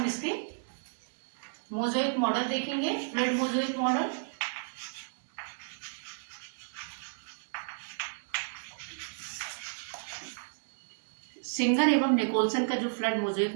इसके मोज़ेक मॉडल देखेंगे, फ्लड मोज़ेक मॉडल। सिंगर एवं निकोलसन का जो फ्लड मोज़ेक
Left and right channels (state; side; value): silent; left; digital silence